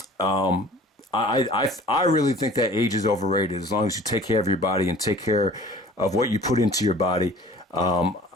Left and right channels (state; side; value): normal; both; correlation 0.47